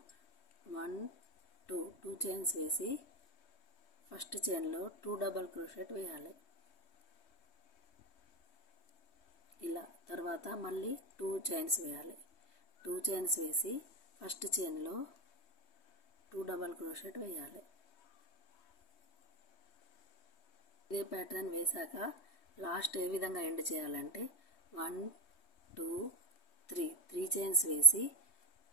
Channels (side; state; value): right; late; 3.2 ms